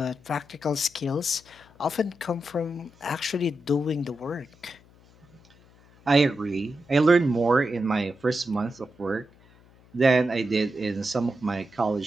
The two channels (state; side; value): noise; left; hum, 27 dB below the sound